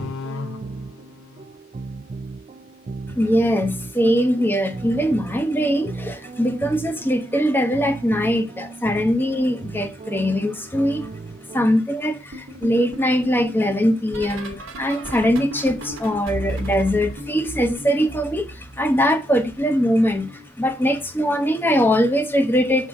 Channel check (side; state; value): both; normal; correlation 0.82